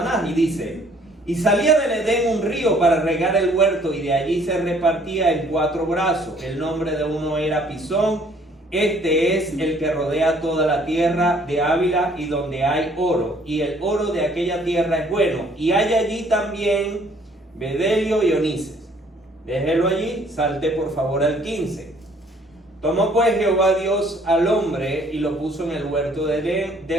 Y dice: y salía del Edén un río para regar el huerto, y de allí se repartía en 4 brazos. El nombre de uno era Pisón. Este es el que rodea toda la tierra de Ávila, y donde hay oro, y el oro de aquella tierra es bueno. Y hay allí también bedelio y onices. Déjelo allí, salte por favor al 15. Tomó pues Jehová Dios al hombre y lo puso en el huerto del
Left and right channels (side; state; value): both; normal; correlation 0.60